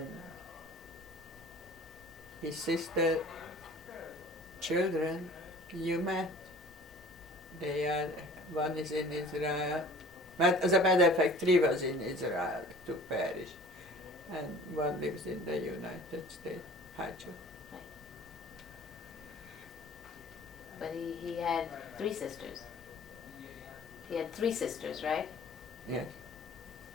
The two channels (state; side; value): normal; both; correlation 0.47